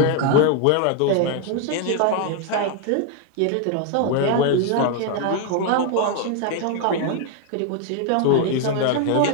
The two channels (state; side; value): different; both; correlation 0.01